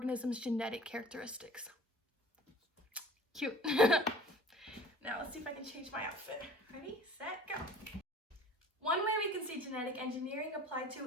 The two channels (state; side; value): normal; both; correlation 0.45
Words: genetic characteristics. Cute. Now, let's see if I can change my outfit. Ready, set, go. One way we can see genetic engineering applied to